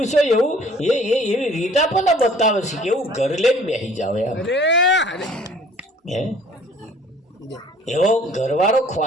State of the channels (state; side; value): normal; both; correlation 0.53